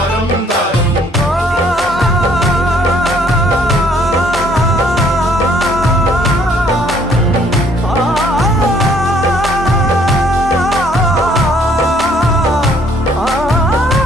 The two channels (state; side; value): normal; both; correlation 0.62